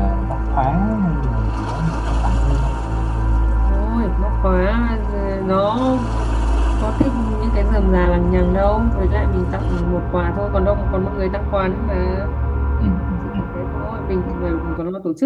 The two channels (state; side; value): identical; both; correlation 1.00